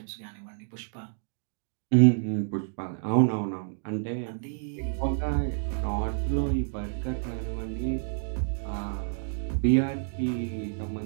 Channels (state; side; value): silent; left; digital silence